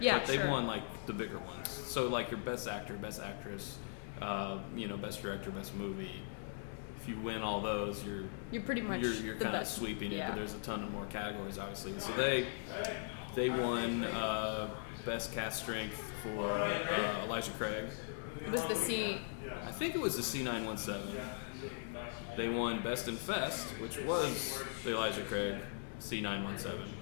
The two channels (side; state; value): right; silent; digital silence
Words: Yeah, but they sure. won like the bigger ones. So like your best actor, best actress, best director, best movie. If you win all those, you're pretty much you're the kind of best. sweeping it. Yeah. But there's a ton of more categories, obviously. So they won best cast strength for Elijah Craig. It was the C. I think it was the C917. They won Best in Fest, which was the Elijah Craig C917.